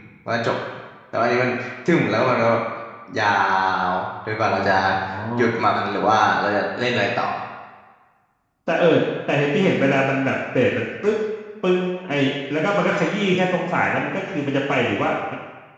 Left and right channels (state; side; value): identical; both; correlation 1.00